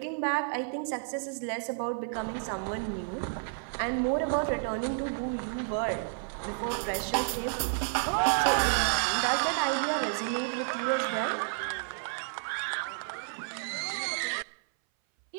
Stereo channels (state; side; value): silent; left; 57 dB below the other